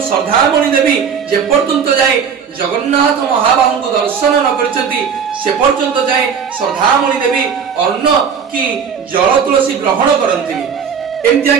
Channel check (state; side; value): quieter; left; 6.9 dB